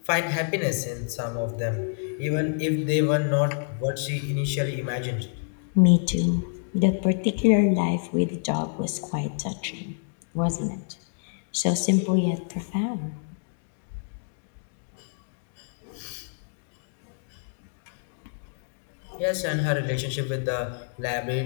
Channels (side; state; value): right; silent; digital silence